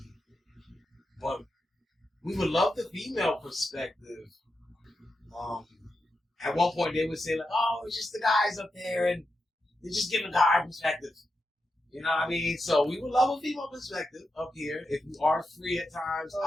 But we would love the female perspective. At one point they would say "Oh, it's just the guys up there, and they're just giving a guy perspective." You know what I mean? So we would love a female perspective up here. If you are free at times,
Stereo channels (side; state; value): both; normal; correlation 0.88